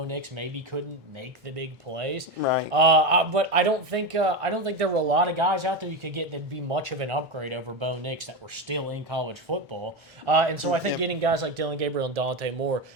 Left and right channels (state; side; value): normal; both; correlation 0.16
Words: Nix maybe couldn't make the big plays. Right. But I don't think there were a lot of guys out there you could get that'd be much of an upgrade over Bo Nix that were still in college football. And so I think Yep. getting guys like Dylan Gabriel and Dante Moore